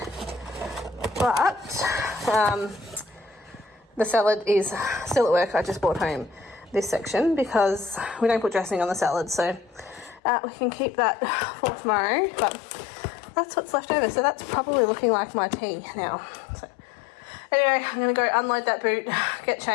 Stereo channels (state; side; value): drops out; right; at 10.2 s